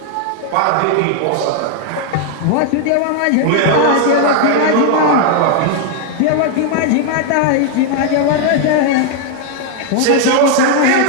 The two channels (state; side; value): different; both; correlation 0.00